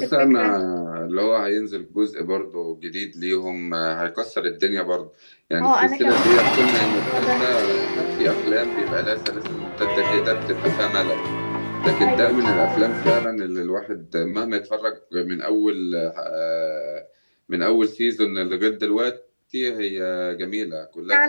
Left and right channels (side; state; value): both; inverted; correlation -1.00